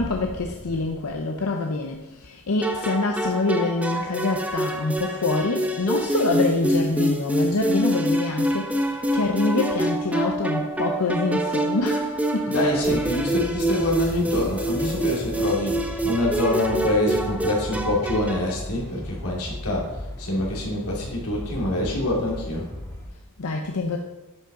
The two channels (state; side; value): normal; both; correlation 0.42